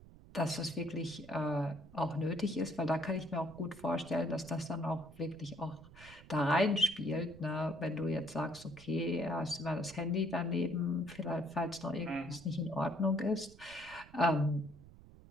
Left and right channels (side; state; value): right; noise; rumble, 20 dB below the sound